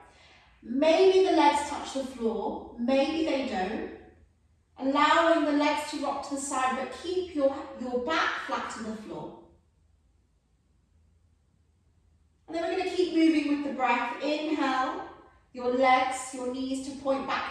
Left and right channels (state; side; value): identical; both; correlation 1.00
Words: Maybe the legs touch the floor, maybe they don't. Allowing the legs to rock to the side, but keep your back flat to the floor. And then we're going to keep moving with the breath. Inhale, your legs, your knees to point